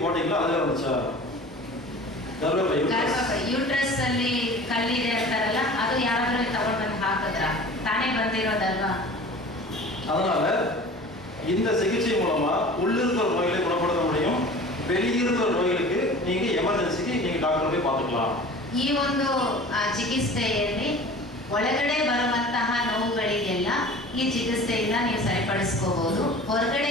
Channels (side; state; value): both; normal; correlation 0.41